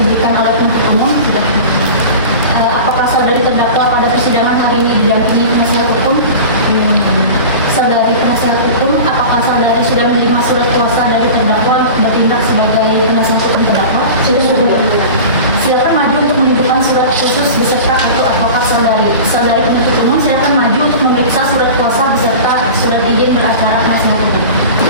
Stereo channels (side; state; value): both; inverted; correlation -0.34